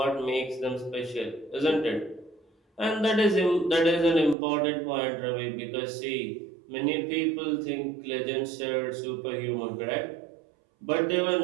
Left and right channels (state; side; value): drops out; left; at 4.4 s